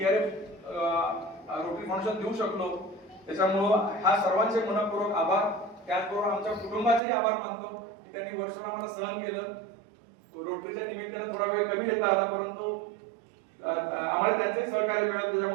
रोटरी फाउंडेशन देऊ शकलो. त्याच्यामुळं ह्या सर्वांचे मनपूर्वक आभार. त्याचबरोबर आमच्या कुटुंबाचेही आभार मानतो की त्यांनी वर्षभर आम्हाला सहन केलं. रोटरीच्या निमित्तानं थोडा वेळ कमी देता आला, परंतु आम्हाला त्यांचंही सहकार्य मिळालं.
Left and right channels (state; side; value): drops out; left; at 7.0 s